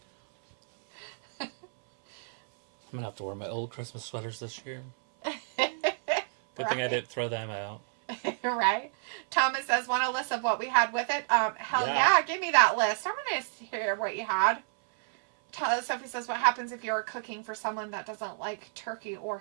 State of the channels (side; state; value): left; silent; 58 dB below the other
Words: I'm going to have to wear my old Christmas sweaters this year. Good thing I didn't throw them out. Right? Thomas says, want a list of what we had with it? Hell yeah, give me that list. I want to hear what you had. Sophie says, what happens if you're cooking for someone that doesn't like turkey or